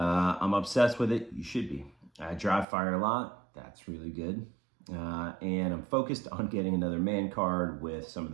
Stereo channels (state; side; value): drops out; left; at 2.7 s